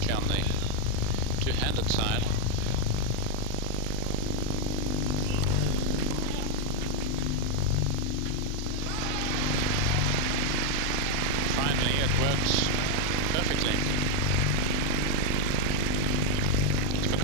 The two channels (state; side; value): different; both; correlation 0.00